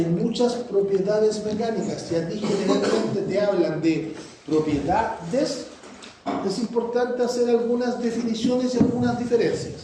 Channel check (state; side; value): identical; both; correlation 1.00